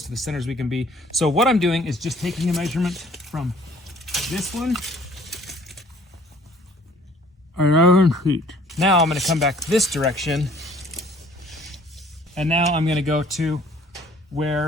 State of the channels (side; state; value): both; normal; correlation 0.56